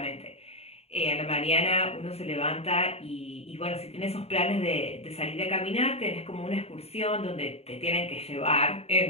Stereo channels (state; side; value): late; right; 0.30 ms